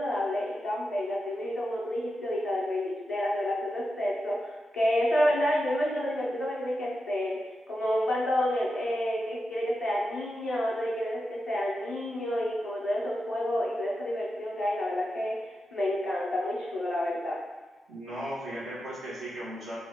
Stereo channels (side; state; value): both; normal; correlation 0.89